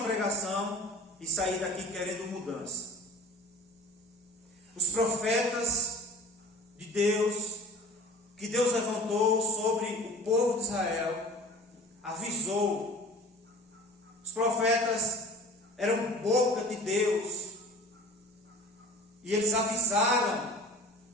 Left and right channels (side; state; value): both; normal; correlation 0.43